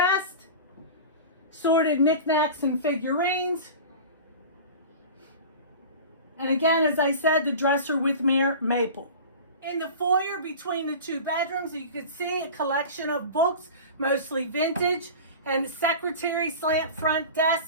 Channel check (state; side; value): inverted; both; correlation -0.34